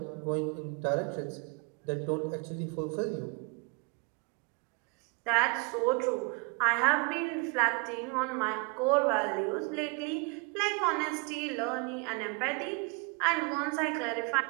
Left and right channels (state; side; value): quieter; left; 31.8 dB